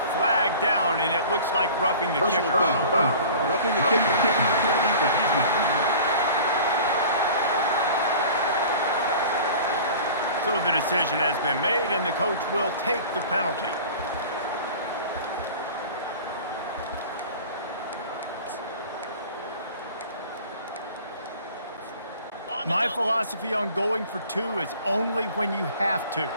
flag down, and it looks like roughing the kicker. Roughing the kicker. Defense. So the decision has been made, and the coach will take the penalty. My philosophy on going for two is only when you have to.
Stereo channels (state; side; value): inverted; both; correlation -0.42